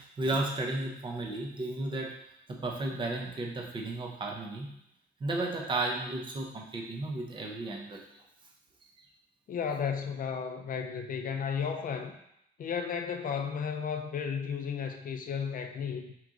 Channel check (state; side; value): normal; both; correlation 0.48